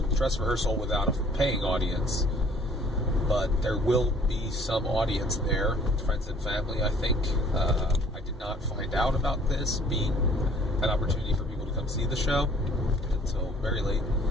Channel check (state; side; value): normal; both; correlation 0.55